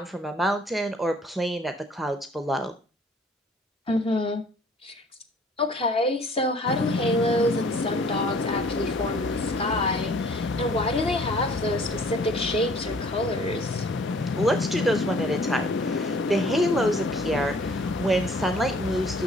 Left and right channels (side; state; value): both; normal; correlation 0.55